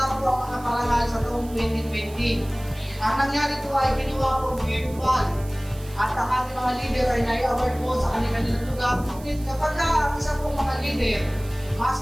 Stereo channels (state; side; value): noise; right; hiss, 20 dB below the sound